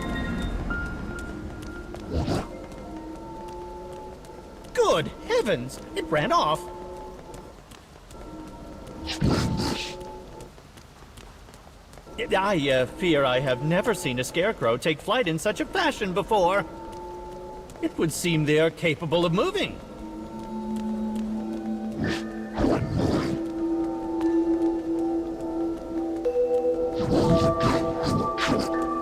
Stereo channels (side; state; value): both; identical; correlation 1.00